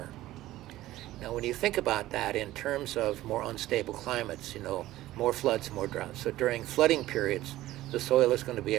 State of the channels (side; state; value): left; quieter; 15.5 dB